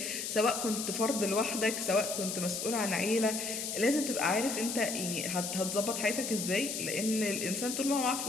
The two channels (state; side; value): noise; left; hiss, 4 dB below the sound